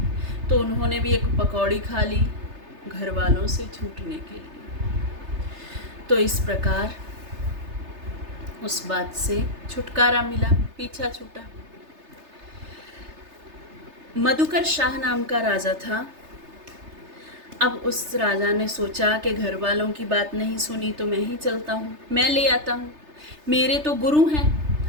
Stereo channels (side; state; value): left; late; 3.3 ms